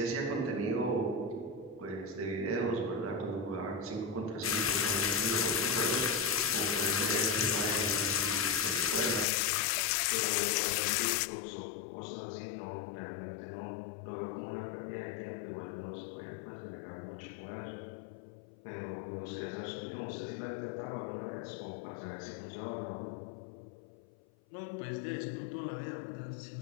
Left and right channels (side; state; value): right; drops out; at 9.2 s